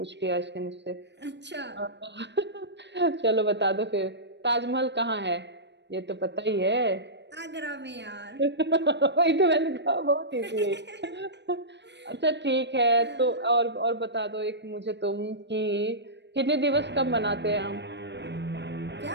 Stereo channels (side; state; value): left; late; 0.51 ms